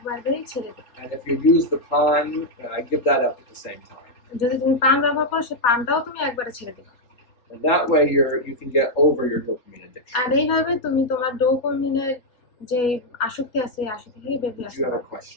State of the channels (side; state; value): right; late; 3.9 ms